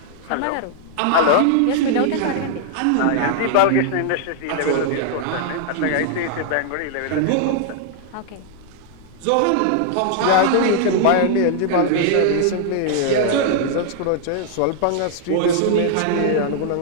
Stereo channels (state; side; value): different; both; correlation 0.00